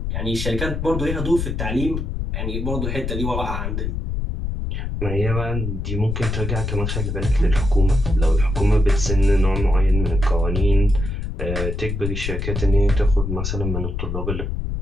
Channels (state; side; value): noise; left; rumble, 3 dB below the sound